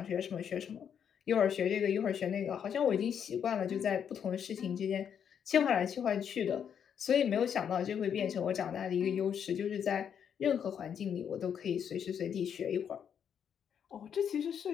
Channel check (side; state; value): right; quieter; 8.1 dB